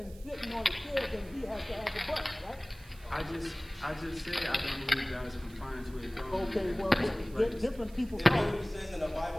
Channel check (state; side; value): noise; right; hiss, 23 dB below the sound